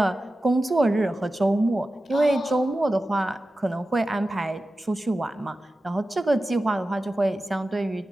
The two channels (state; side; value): normal; both; correlation 0.94